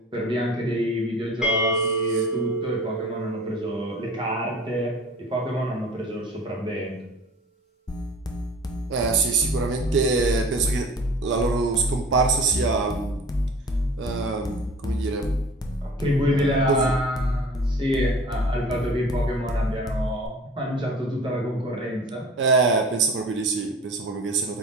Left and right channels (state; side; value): normal; both; correlation 0.42